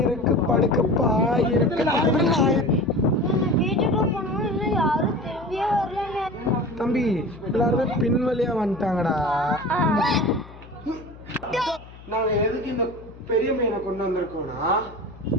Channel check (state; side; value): noise; left; hum, 19 dB below the sound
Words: இருக்கு, படுக்க பாய் இருக்கு. வீட்டுக்குள்ள போனோம் இல்ல யாரும் திரும்பியே வரலங்க. தம்பி எல்லாருமே பின்வழியா வந்துட்டாங்கடா. நாங்க எதுக்கு இந்த பெரிய மீனை கொண்டு வந்திருக்கோம்னா,